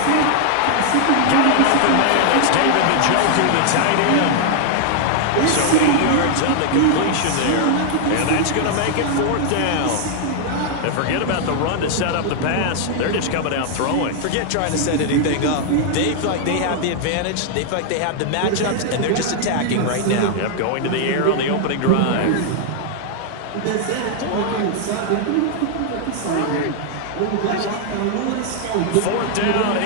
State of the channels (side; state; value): both; different; correlation 0.00